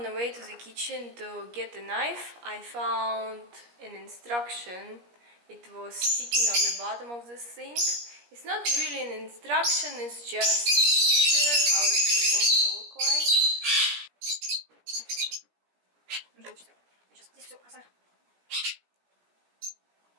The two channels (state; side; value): late; left; 17 ms